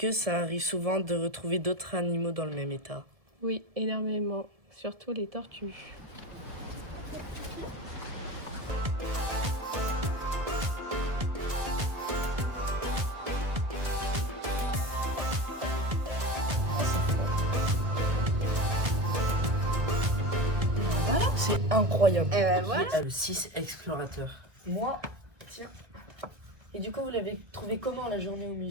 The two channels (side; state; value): left; late; 1.7 ms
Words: ça arrive souvent de retrouver d'autres animaux dans le même état? Oui, énormément, surtout les tortues. C'est incroyable. Qui est le 6 explorateur? Moi, tiens. Et du coup, vous l'avez trouvé comment la journée au